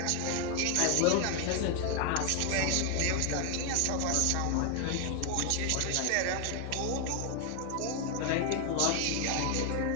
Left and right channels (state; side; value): different; both; correlation 0.00